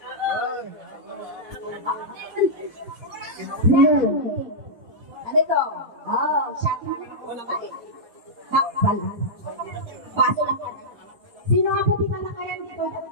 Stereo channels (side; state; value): left; late; 4.1 ms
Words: Meron. Ano ito? Shot. Takbal. Baso lang. Sino nga po di ba nakayan dito?